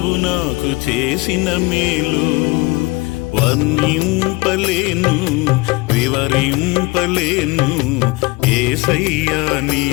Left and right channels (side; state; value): right; quieter; 24.0 dB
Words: నాకు చేసిన మేలు. వర్ణింపలేను వివరింపలేను యేసయ్యా